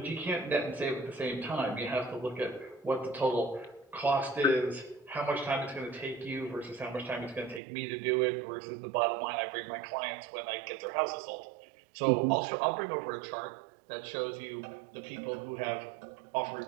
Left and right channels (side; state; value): left; drops out; at 7.6 s